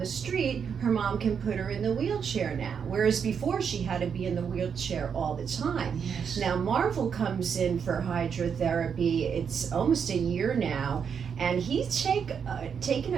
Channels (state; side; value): quieter; left; 7.0 dB